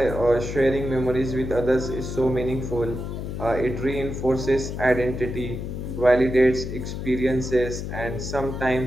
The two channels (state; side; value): noise; left; hum, 6 dB below the sound